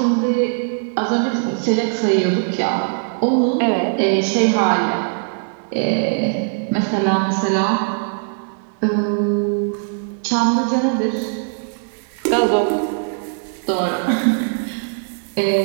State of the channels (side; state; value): left; silent; digital silence